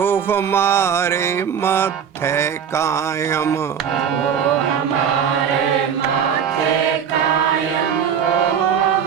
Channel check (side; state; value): left; quieter; 7.9 dB